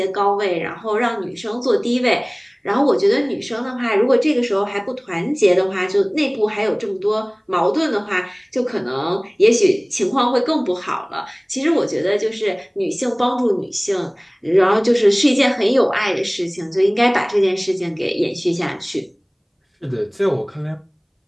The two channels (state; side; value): identical; both; correlation 1.00